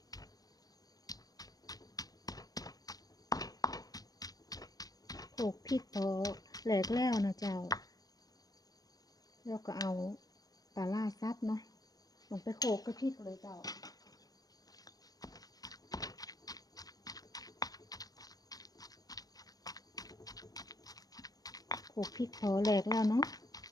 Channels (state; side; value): late; right; 0.18 ms